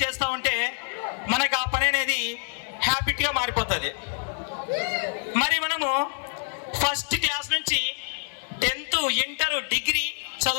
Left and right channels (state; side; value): silent; right; digital silence